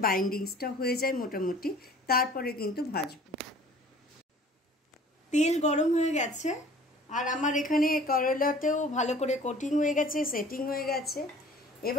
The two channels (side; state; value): both; normal; correlation 0.49